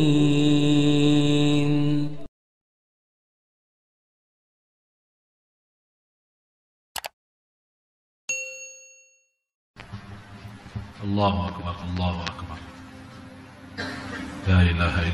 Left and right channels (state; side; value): identical; both; correlation 1.00